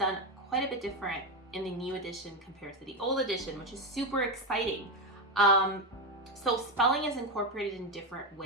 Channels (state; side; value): normal; both; correlation 0.10